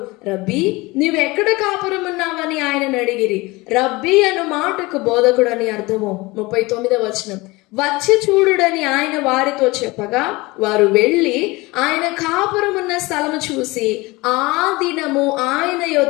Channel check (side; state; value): right; quieter; 22.6 dB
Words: రబ్బీ నీవెక్కడ కాపురం ఉన్నావని ఆయనను అడిగిరి. రబ్బీ అను మాటకు బోధకుడు అని అర్థము. 39వ వచనం, వచ్చి చూడుడని ఆయన వారితో చెప్పగా వారు వెళ్ళి ఆయన కాపురం ఉన్న స్థలము చూసి ఆ దినము ఆయన